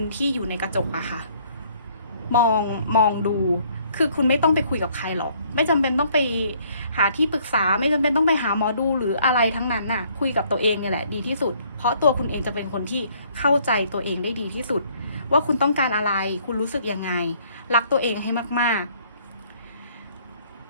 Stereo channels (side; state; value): both; inverted; correlation -0.63